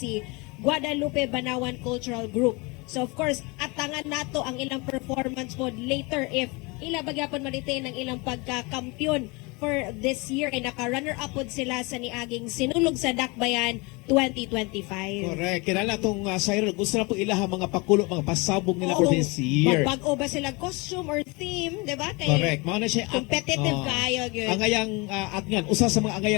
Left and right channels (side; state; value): right; quieter; 27.1 dB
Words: Guadalupe Banawan Cultural Group. So of course, atangan nato ang ilang performance po later if ila bagyapon malitain ang ilang pagka-kampiyon for this year kay naka-runner-up pod sila sa niaging Sinulog sa Dakbayan 2025. Correct. Kinala tong Siren, gusto na po ilaha mga pakulo, mga pasabog nila for this year. Magbago ba sila costume or theme, di ba? Kay Correct. Mao na siya competitive kayo gyud. angayang atngan, usa sa mga